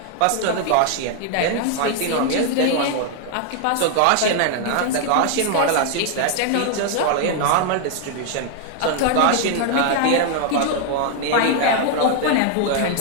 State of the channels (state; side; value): different; both; correlation 0.00